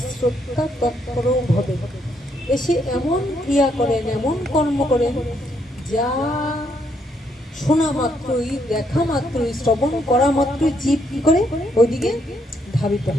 তৎপর ভবে। এসে এমন ক্রিয়া করেন, এমন কর্ম করেন, যা শোনা মাত্রই, দেখা মাত্রই, শ্রবণ করা মাত্রই জীব কি করে ওইদিকে ধাবিত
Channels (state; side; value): normal; both; correlation 0.74